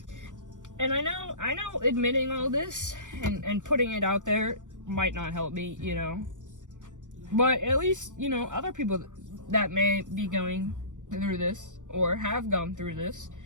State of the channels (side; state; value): left; late; 0.86 ms